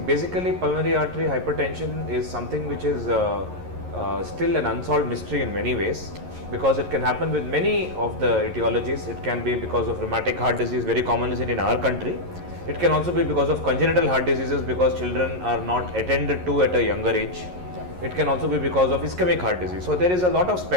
pulmonary artery hypertension is something which is still an unsolved mystery in many ways, because it can happen with many of the etiologies. It can be because of rheumatic heart disease, very commonly seen in our country. It can also be because of congenital heart diseases, because children are not attended to at a younger age. It can also be because of ischemic heart disease. So there is a lot of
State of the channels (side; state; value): left; late; 11 ms